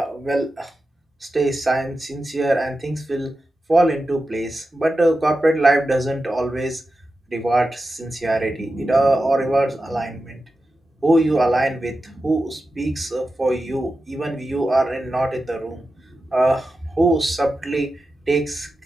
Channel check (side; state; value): both; normal; correlation 0.91